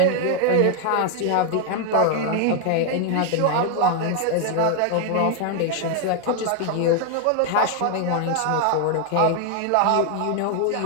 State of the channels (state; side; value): different; both; correlation 0.00